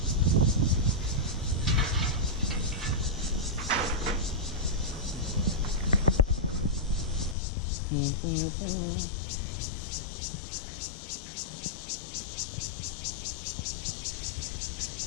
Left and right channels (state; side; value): drops out; right; at 7.4 s